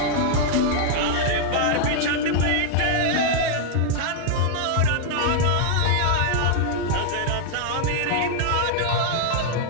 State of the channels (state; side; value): different; both; correlation 0.00